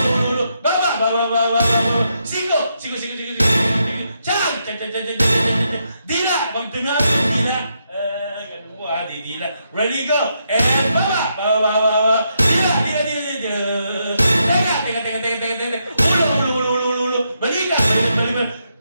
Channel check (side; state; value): both; inverted; correlation -0.80